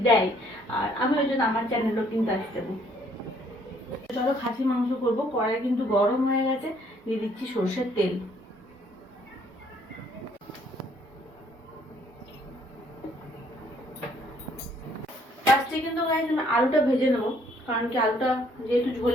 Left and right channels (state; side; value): normal; both; correlation 0.64